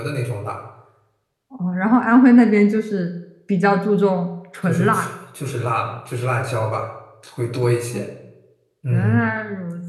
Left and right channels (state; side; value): identical; both; correlation 1.00